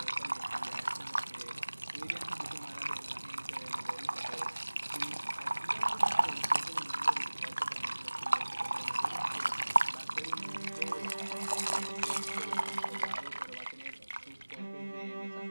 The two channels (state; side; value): inverted; both; correlation -1.00